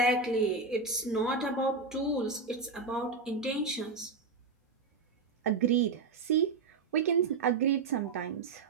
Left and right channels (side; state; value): left; quieter; 4.4 dB